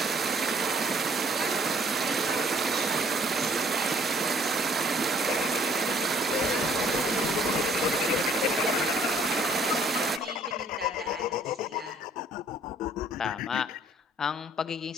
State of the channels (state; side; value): normal; both; correlation 0.60